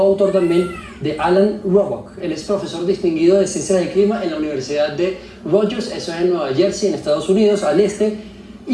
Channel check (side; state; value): both; identical; correlation 1.00